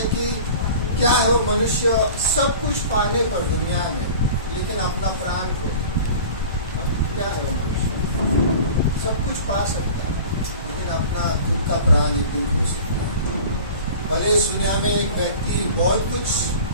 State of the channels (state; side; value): inverted; both; correlation -0.40